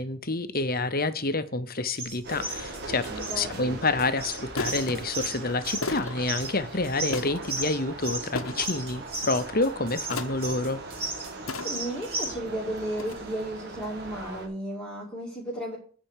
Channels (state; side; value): normal; both; correlation 0.11